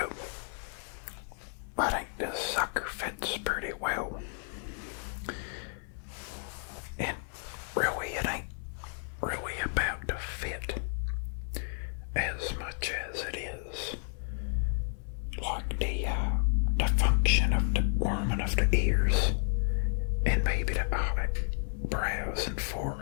I think this sucker fits pretty well. And really, it ain't really about the fit as much as it is like the function of the warming of the ears and maybe the eyebrows and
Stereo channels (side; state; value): right; silent; 56 dB below the other